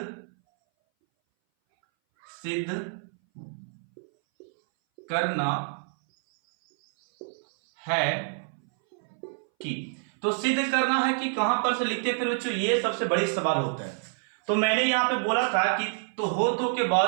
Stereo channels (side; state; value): left; silent; 59 dB below the other